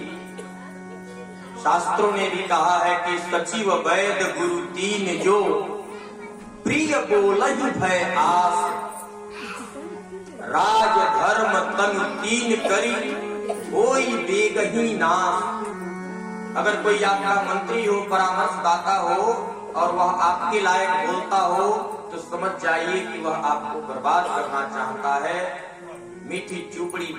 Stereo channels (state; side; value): identical; both; correlation 1.00